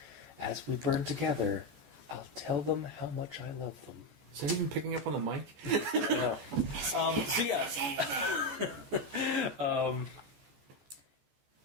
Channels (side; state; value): left; late; 14 ms